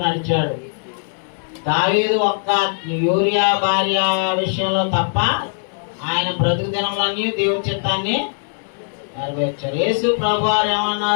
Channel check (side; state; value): right; silent; digital silence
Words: నడిచాడు. దావీదు ఒక్క యూరియా భార్య విషయంలో తప్ప ఆయన బ్రతుకు దినములన్నీ దేవుని చిత్తాన్ని నెరవేర్చారు. యేసు ప్రభు వారు